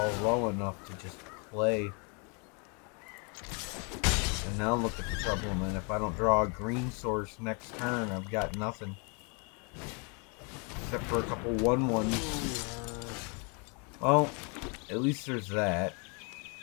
low enough to just play. And now look at the trouble, man. If I don't draw a green source next turn, I've got nothing. Except for a couple 1/1s. Well, at least there's that.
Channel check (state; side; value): quieter; right; 35.1 dB